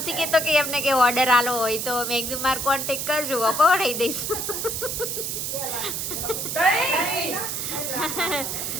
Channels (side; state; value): right; noise; hiss, 3 dB below the sound